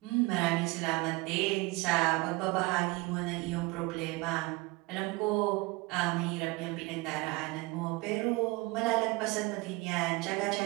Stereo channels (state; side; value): quieter; left; 23.6 dB